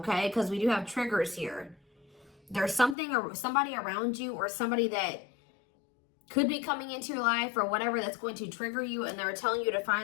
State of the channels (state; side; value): drops out; right; at 3.0 s